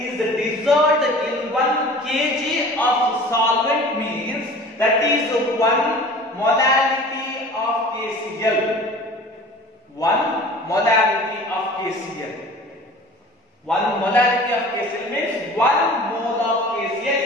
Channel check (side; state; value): both; normal; correlation 0.42